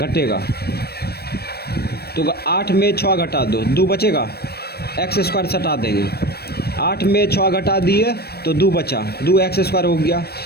तो 8 में 6 घटा दो, 2 बचेगा, एक्स स्क्वायर हटा देंगे, 8 में 6 घटा दिए तो 2 बचा, 2 एक्स स्क्वायर हो गया।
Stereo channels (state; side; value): late; right; 0.47 ms